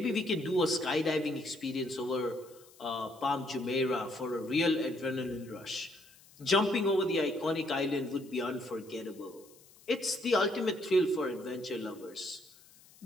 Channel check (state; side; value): noise; left; hiss, 25 dB below the sound